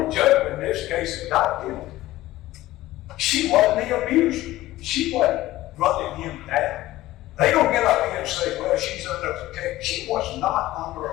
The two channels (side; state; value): right; quieter; 16.4 dB